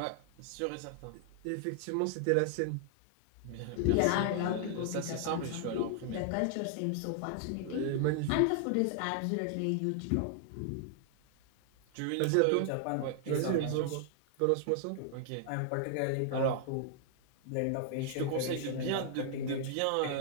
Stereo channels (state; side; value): different; both; correlation 0.00